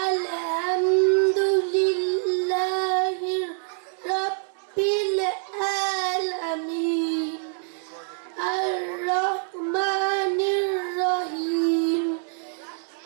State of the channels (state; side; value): silent; left; 61 dB below the other